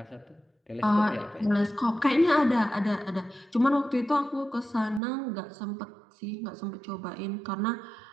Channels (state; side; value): drops out; left; at 5.0 s